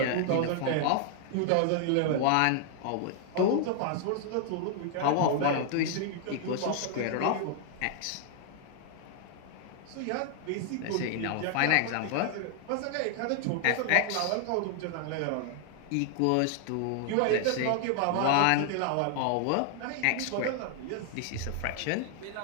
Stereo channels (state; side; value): different; both; correlation 0.00